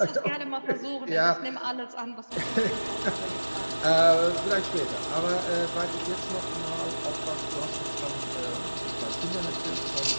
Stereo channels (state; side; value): inverted; both; correlation -1.00